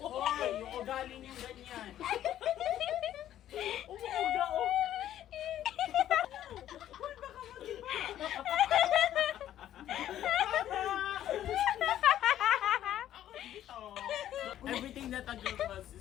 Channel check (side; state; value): right; quieter; 11.8 dB